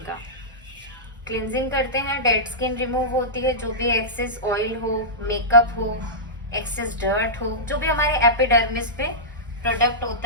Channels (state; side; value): normal; both; correlation -0.15